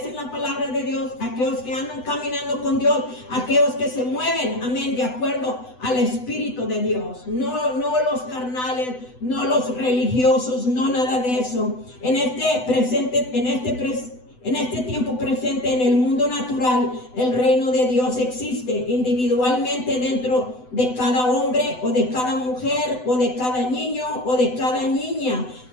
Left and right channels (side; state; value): right; late; 8.0 ms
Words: la palabra de Dios, aquellos que andan caminando con Dios, aquellos que se mueven, amén, de acuerdo al Espíritu de Dios. No los carnales, no los religiosos, no nada de eso. En este tiempo presente en el mundo natural, el reino de Dios existe individualmente dentro de cada hombre o de cada mujer o de cada niño o de cada niña